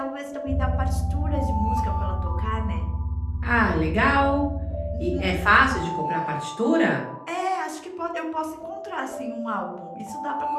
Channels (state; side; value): identical; both; correlation 1.00